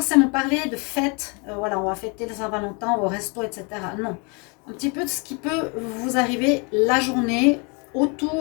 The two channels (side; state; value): right; quieter; 32.5 dB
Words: parler de fête. Voilà, on va fêter le Saint-Valentin au resto, etc. Non. Un petit peu de ce qui peut vous arriver la journée